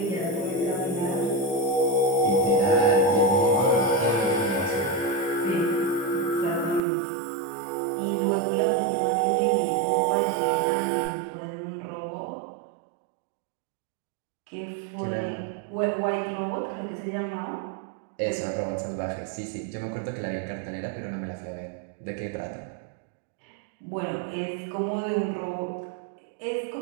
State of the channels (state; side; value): drops out; left; at 6.8 s